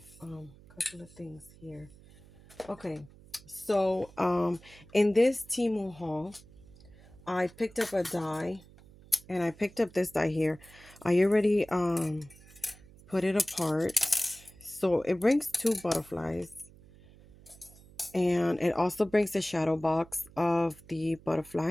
a couple of things here. Okay. So in this Temu haul, I picked up a die and I picked up this die here. I already put it apart. So it brings two butterflies. And it also brings the shadow box of the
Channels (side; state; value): right; noise; hum, 23 dB below the sound